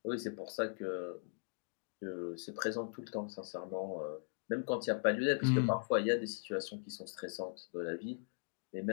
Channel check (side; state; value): right; silent; digital silence